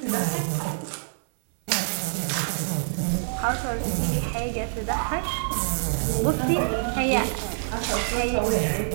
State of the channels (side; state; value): left; silent; digital silence